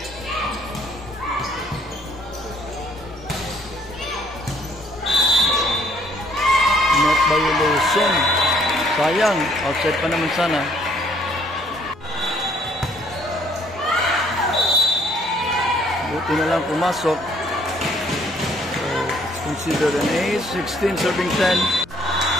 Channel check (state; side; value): normal; both; correlation 0.64